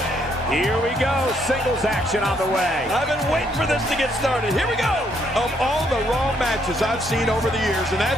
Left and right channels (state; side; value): normal; both; correlation 0.71